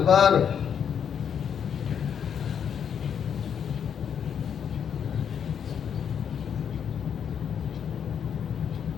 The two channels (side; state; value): right; quieter; 7.9 dB